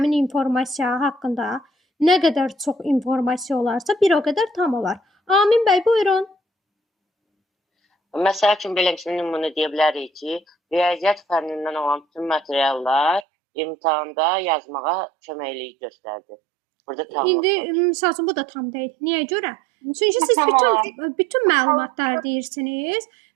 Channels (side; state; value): left; drops out; at 13.2 s